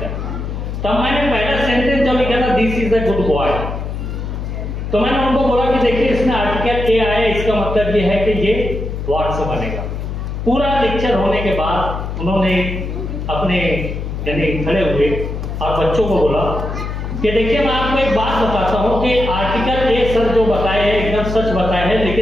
तब मैंने पहला सेंटेंस जो लिखा था, this is a good boy, तो मैंने उनको बोला कि देखिए इसमें आर्टिकल ए आया, इसका मतलब ये है कि ये व्हाट से बनेगा। पूरा लेक्चर होने के बाद उन्होंने अपने यानी खड़े हुए और बच्चों को बोला कि देखिए मैं आपको एक बात बताता हूं कि आर्टिकल ए सर जो बताए हैं एकदम सच बताए हैं,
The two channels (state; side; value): noise; left; hum, 5 dB below the sound